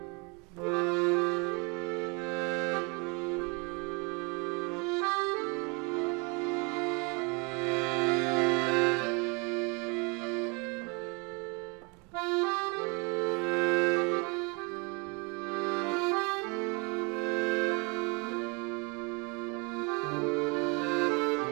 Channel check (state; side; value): quieter; left; 30.9 dB